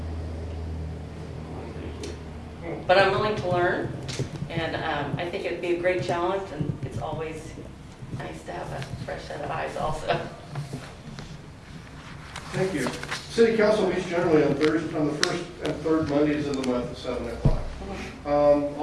Thank you. But I'm willing to learn, and I think it'd be a great challenge, and it's always nice to have a fresh set of eyes also. Thank you. City council meets generally on the first and third Mondays of the month at 7 o'clock.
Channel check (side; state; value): both; identical; correlation 1.00